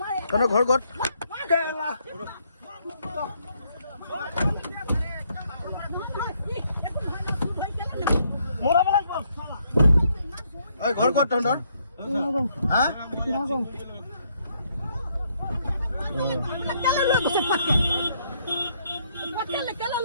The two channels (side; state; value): both; inverted; correlation -0.72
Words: তহঁতৰ ঘৰ ক'ত ঘৰ ক'ত তহঁতৰ হা